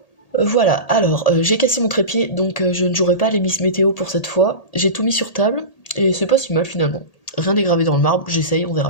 Voilà, alors j'ai cassé mon trépied donc je ne jouerai pas les Miss Météo pour cette fois. J'ai tout mis sur table et c'est pas si mal finalement. Rien n'est gravé dans le marbre, j'essaye, on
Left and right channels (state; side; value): late; right; 1.8 ms